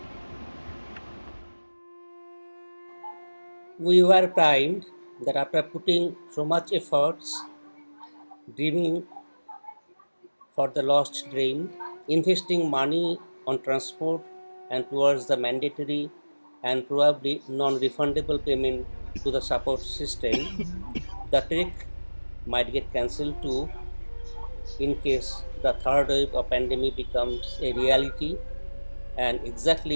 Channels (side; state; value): both; inverted; correlation -1.00